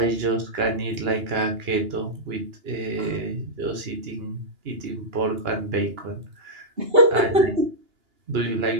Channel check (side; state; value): left; late; 2.9 ms